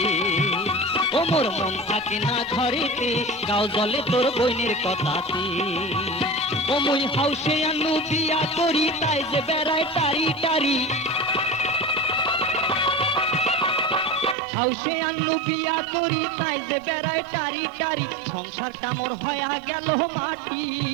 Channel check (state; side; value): drops out; left; at 14.4 s